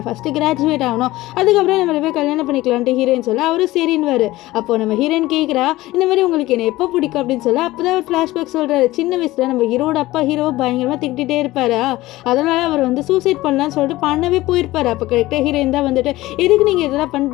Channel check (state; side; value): quieter; right; 17.7 dB